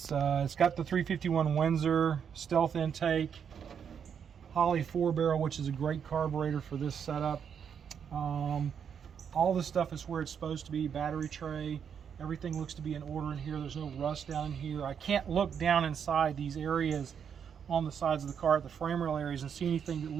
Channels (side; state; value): left; quieter; 7.5 dB